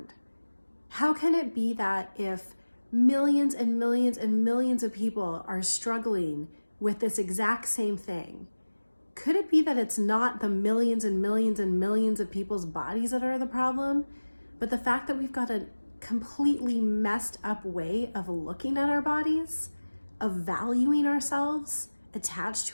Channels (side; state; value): both; inverted; correlation -1.00